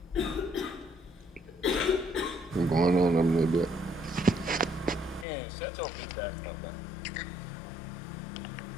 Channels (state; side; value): drops out; right; at 5.2 s